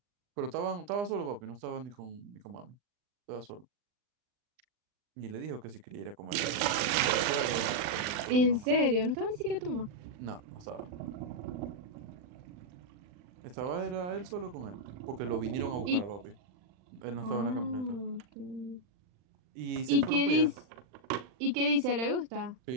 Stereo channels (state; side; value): late; left; 39 ms